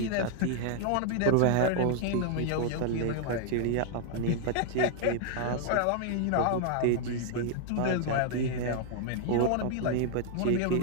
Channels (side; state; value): both; different; correlation 0.00